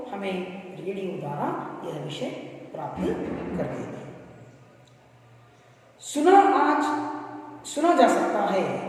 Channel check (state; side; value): identical; both; correlation 1.00